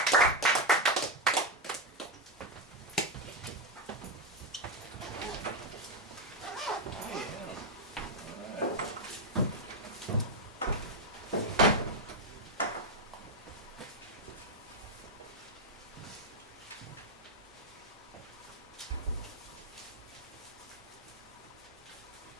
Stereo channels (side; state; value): both; normal; correlation 0.04